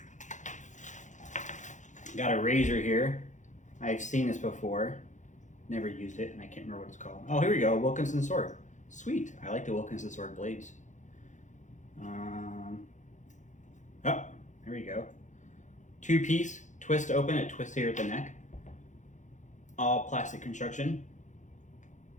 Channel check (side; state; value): right; late; 0.35 ms